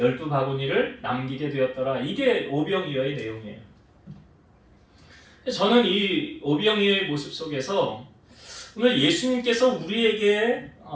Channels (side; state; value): both; identical; correlation 1.00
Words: 남기게 되었더라. 이게 오병이어의 내용이에요. 저는 이 오병이어의 모습 속에서 오늘 예수님께서 우리에게